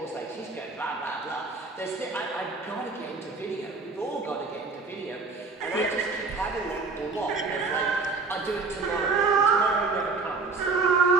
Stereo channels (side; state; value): left; quieter; 4.1 dB